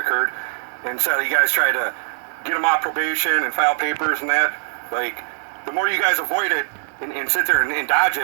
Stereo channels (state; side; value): silent; left; digital silence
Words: Instead of you guys try to get them off probation and file papers and that, like, the more you guys avoid it and sit there and dodge